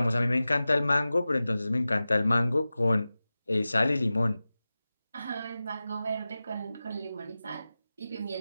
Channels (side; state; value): both; inverted; correlation -0.95